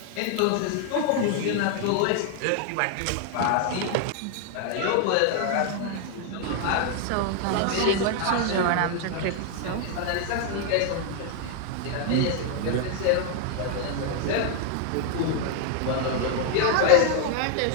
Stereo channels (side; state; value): both; different; correlation 0.00